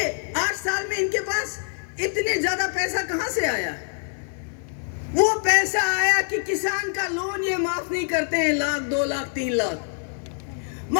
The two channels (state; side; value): silent; right; digital silence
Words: 8 साल में इनके पास इतने ज्यादा पैसा कहां से आया? वो पैसा आया कि किसान का लोन ये माफ नहीं करते हैं, 1 लाख, 2 लाख, 3 लाख।